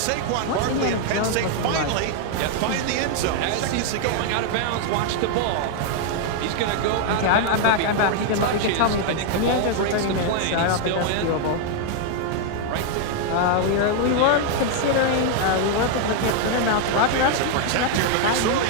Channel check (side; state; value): both; different; correlation 0.00